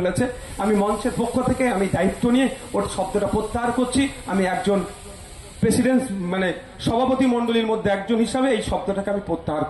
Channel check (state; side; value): identical; both; correlation 1.00